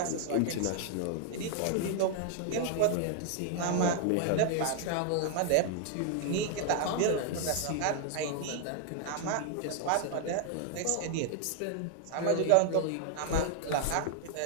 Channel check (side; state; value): both; different; correlation 0.00